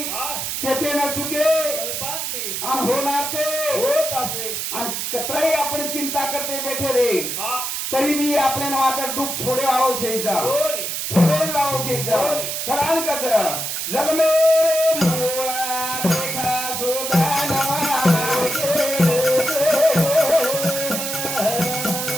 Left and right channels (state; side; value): noise; right; hiss, 3 dB below the sound